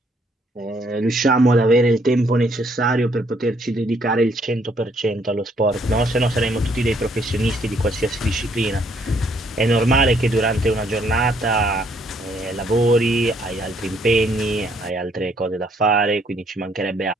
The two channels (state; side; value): normal; both; correlation 0.67